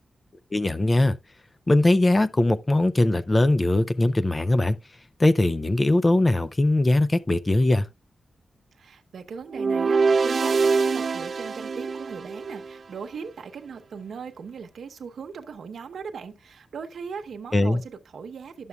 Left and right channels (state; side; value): normal; both; correlation 0.95